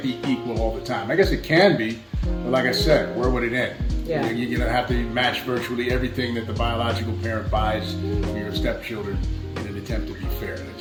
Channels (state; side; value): identical; both; correlation 1.00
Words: be equal all the time. I guess it can be, but like I said, where would it end? Yeah. You're going to have to match virtually everything that the biological parent buys for your stepchildren in an attempt to be fair. It